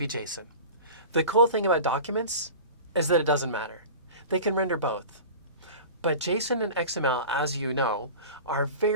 JSON. The cool thing about Documents is that it doesn't matter. They can render both. But JSON and XML, as you know, are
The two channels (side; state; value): both; inverted; correlation -0.35